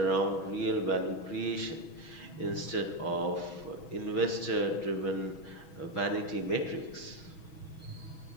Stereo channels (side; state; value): right; late; 6.2 ms